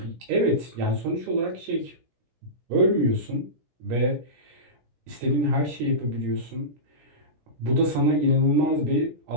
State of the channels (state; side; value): late; left; 17 ms